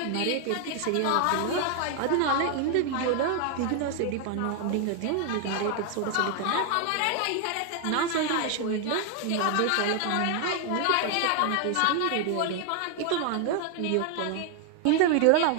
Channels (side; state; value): both; different; correlation 0.00